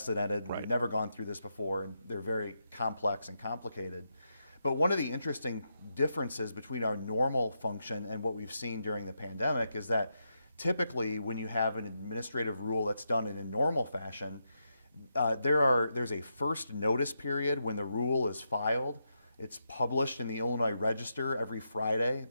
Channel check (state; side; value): inverted; both; correlation -0.83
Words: We've never gone through this before, and they're very complex and complicated. But one of the interesting differences between our normal function and what we've seen during the pandemic is that typically when you have an administrative rule that's done in a normal fashion, there's a first notice period when the rule is filed. It's published in the Illinois Register every Friday